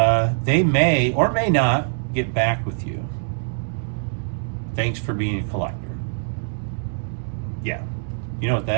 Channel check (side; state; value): left; silent; digital silence